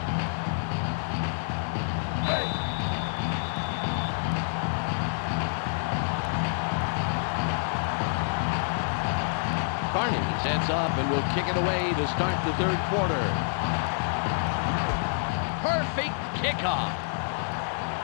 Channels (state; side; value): silent; right; 58 dB below the other